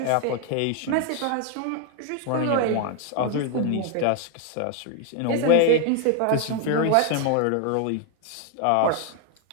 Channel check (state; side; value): different; both; correlation 0.01